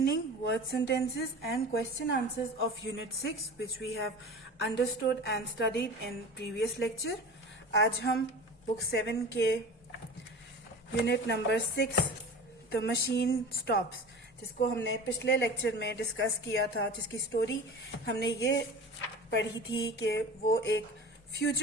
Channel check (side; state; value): both; normal; correlation 0.35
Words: word sentences and question answers of unit 6 which we have understood and studied in previous lecture. आज हम book 7 के unit number 6 The Machine Stops जिसको हमने पिछले lecture में discuss किया था, जिसकी स्टोरी हमने ये पढ़ी थी कि वो एक